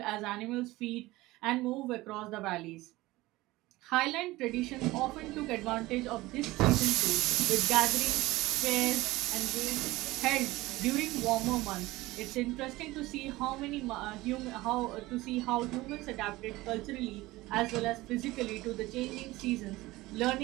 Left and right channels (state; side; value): quieter; left; 19.2 dB